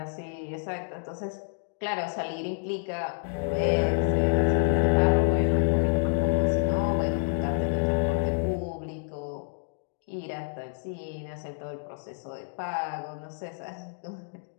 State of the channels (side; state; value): right; silent; 59 dB below the other